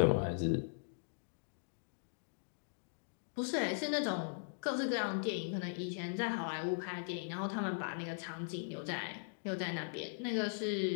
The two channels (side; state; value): right; silent; digital silence